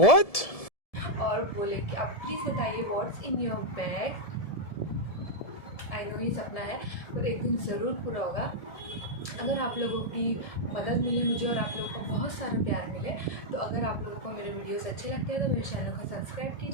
और बोले कि आप प्लीज़ बताइए what's in your bag. I know ये सपना है पर एक दिन ज़रूर पूरा होगा अगर आप लोगों की मदद मिले मुझे और आप लोगों को बहुत सारा प्यार मिले। तो अगर आप लोगों को मेरे वीडियोस अच्छे लगते हैं तो मेरे चैनल को सब्सक्राइब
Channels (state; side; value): late; right; 1.7 ms